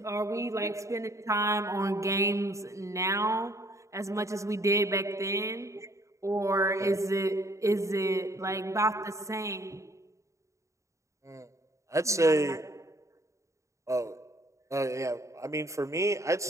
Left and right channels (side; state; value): left; late; 0.15 ms